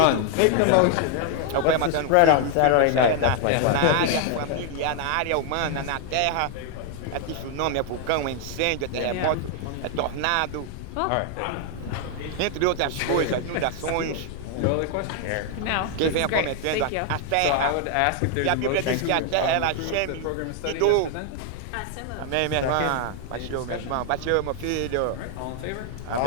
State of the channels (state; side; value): different; both; correlation 0.00